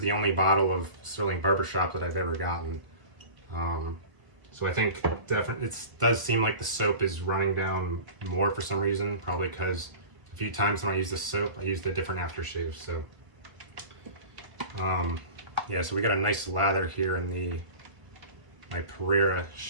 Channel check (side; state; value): left; late; 1.6 ms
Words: only bottle of Stirling Barbershop that I've ever gotten. So I think definitely it does seem like the soap is running down more for some reason, probably because a few times when I use the soap, I used a different aftershave. So yeah, so we got a nice lather here in my Pereira